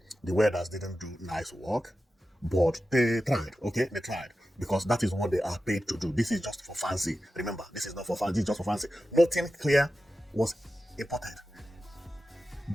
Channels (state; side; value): normal; both; correlation 0.93